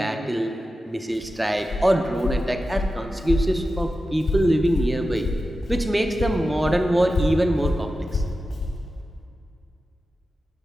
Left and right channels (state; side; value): normal; both; correlation 0.92